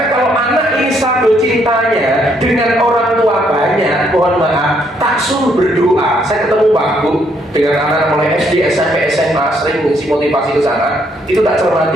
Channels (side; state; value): both; normal; correlation 0.71